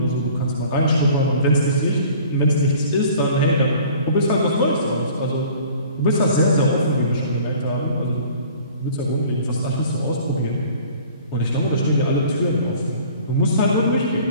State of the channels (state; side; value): inverted; both; correlation -0.49